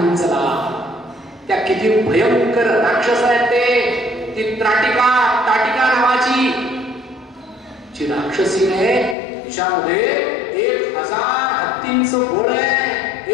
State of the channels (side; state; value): right; drops out; at 9.2 s